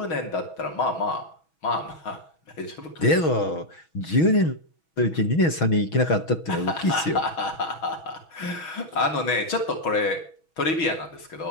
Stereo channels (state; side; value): late; right; 6.2 ms